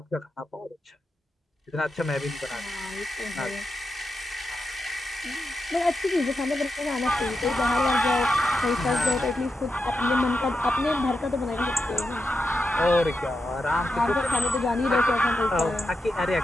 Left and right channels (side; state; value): both; normal; correlation 0.87